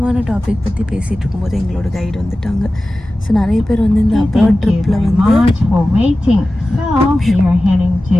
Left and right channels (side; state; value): both; normal; correlation 0.95